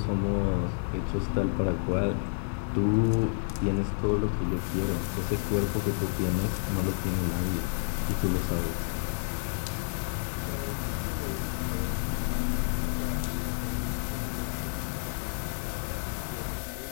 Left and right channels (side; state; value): right; silent; digital silence